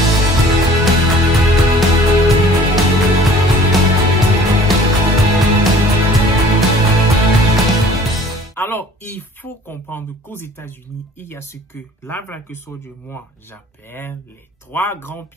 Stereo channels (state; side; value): normal; both; correlation 0.50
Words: Alors, il faut comprendre qu'aux États-Unis, il y a ce que la Black Soldier, moi, j'appelle les trois grands